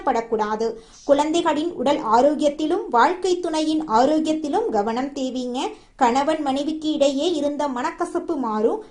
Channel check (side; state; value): both; identical; correlation 1.00